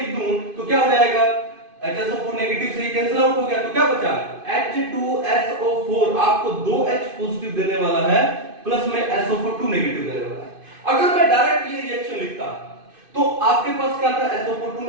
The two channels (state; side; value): late; left; 2.5 ms